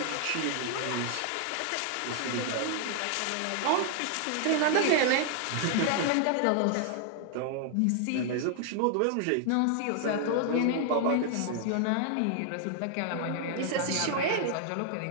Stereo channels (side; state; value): both; different; correlation 0.00